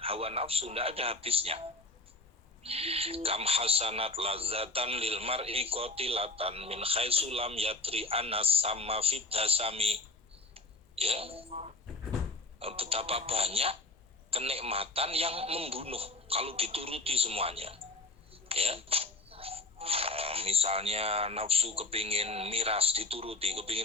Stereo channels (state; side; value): quieter; right; 3.1 dB